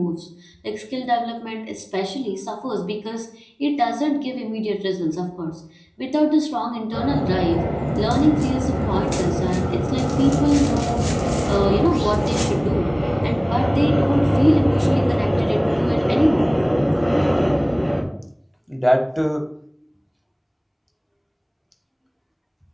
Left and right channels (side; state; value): both; identical; correlation 1.00